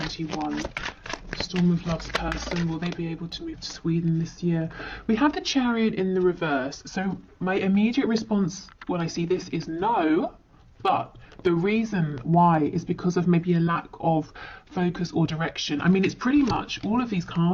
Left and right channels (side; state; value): both; identical; correlation 1.00